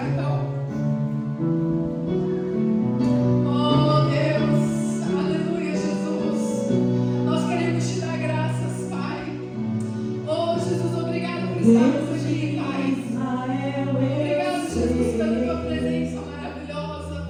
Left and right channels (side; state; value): both; identical; correlation 1.00